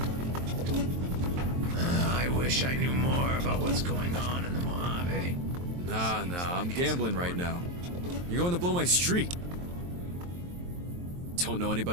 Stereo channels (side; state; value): left; late; 23 ms